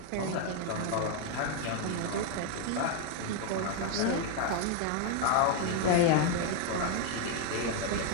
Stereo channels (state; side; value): different; both; correlation 0.01